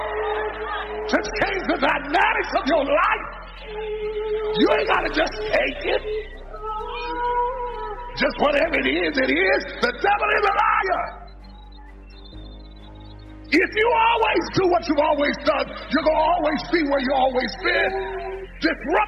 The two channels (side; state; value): both; identical; correlation 1.00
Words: to change the dynamics of your life. You ain't got to just take it. Just whatever it is, it is. The devil is a liar. If you always do what you've always done, you're going to always be where you've always been.